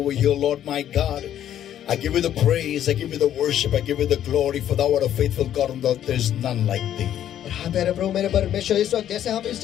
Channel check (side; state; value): right; quieter; 10.9 dB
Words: here, Lord my God, I give you the praise, I give you the worship, I give you the glory, for thou art a faithful God, and there is none like thee. और हाँ प्यारे प्रभु मेरे परमेश्वर, इस वक्त जैसे हम इस